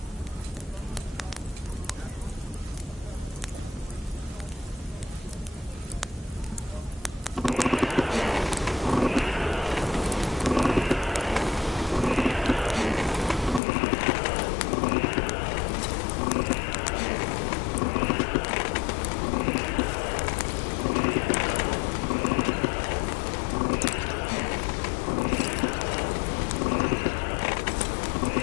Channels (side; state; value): right; drops out; at 13.6 s